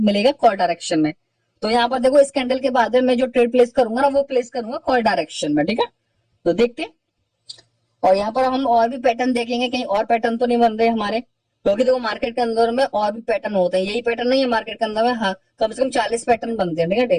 कॉल डायरेक्शन में। तो यहाँ पर देखो, इस कैंडल के बाद में मैं जो ट्रेड प्लेस करूंगा ना, वो प्लेस करूंगा कॉल डायरेक्शन में, ठीक है। तो देखते हैं, और यहाँ पर हम और भी पैटर्न देखेंगे, कहीं और पैटर्न तो नहीं बन रहे हमारे, क्योंकि देखो मार्केट के अंदर में और भी पैटर्न होते हैं, यही पैटर्न नहीं है मार्केट के अंदर में, हाँ, कम से कम 40 पैटर्न बनते हैं, ठीक है,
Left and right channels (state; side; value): identical; both; correlation 1.00